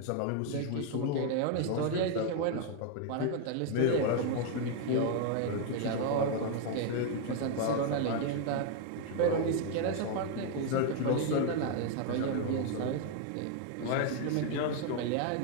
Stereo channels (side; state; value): both; different; correlation 0.00